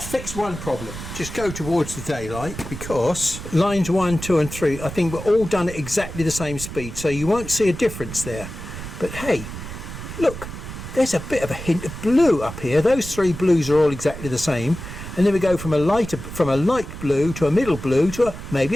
fixed one problem. Just go towards the daylight, because lines 1, 2 and 3 I think we're all done at exactly the same speed, so you won't see a difference there. But hey, look, there's a bit of a hint of blue up here. Those three blues are all exactly the same, and then we go from a light blue to a middle blue to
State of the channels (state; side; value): noise; right; rumble, 10 dB below the sound